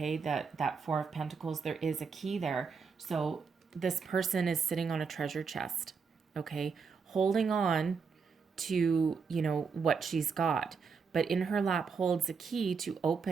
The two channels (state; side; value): quieter; left; 5.5 dB